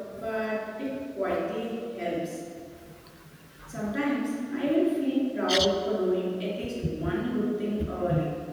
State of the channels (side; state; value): both; identical; correlation 1.00